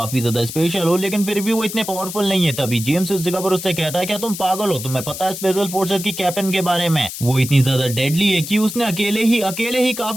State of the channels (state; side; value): noise; left; hiss, 9 dB below the sound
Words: ज्यादा स्पेशल हो लेकिन फिर भी वो इतने पावरफुल नहीं है। तभी जेम्स इस जगह पर उससे कहता है क्या तुम पागल हो? तुम्हें पता है स्पेशल फोर्सेस की कैप्टन के बारे में? वो इतनी ज्यादा डेडली है कि उसने अकेले ही